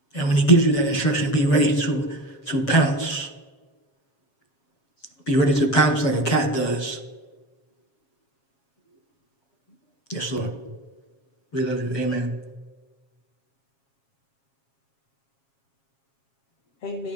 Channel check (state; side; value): late; right; 7.3 ms